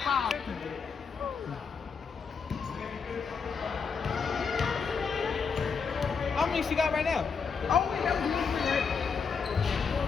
How many she got right now? Oh, wait, that was moving, right?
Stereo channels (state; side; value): quieter; right; 5.7 dB